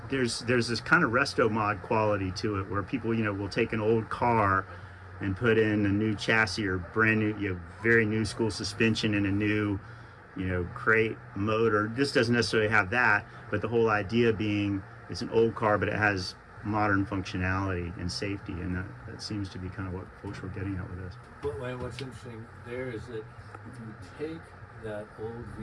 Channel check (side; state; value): both; identical; correlation 1.00